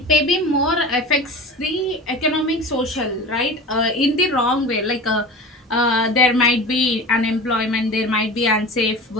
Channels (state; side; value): normal; both; correlation 0.33